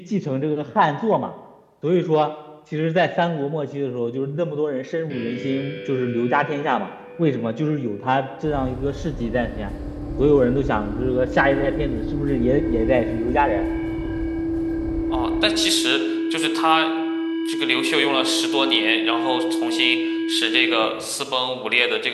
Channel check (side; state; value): both; identical; correlation 1.00